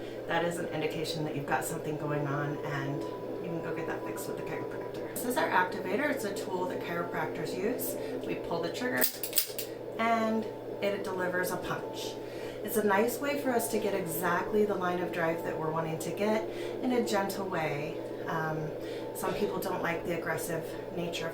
that is an indication that you've got something going on, and you can go get that fixed with the chiropractor. This is our activator. It's a tool that chiropractors use. We pull the trigger and it delivers a punch. It's a nice way for us to get exactly the line of drive that we're wanting to get in a gentle way. Some people don't like the aggressive nature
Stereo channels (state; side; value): identical; both; correlation 1.00